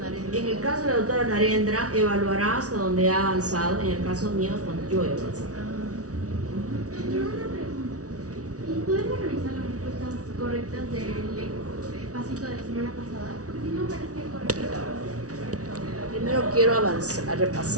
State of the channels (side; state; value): left; late; 0.67 ms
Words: En el caso de la doctora Narendra, evaluará hasta donde ha avanzado. En el caso mío, cuando yo he avanzado. Pero una pregunta. ¿Y podemos revisar las respuestas correctas del pasito de la semana pasada? Porque no parece correcto. Primero quiero avanzar,